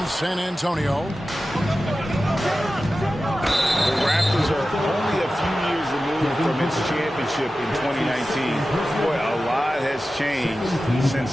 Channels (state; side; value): normal; both; correlation 0.94